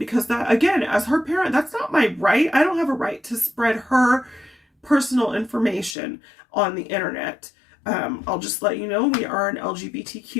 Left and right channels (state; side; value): drops out; right; at 6.0 s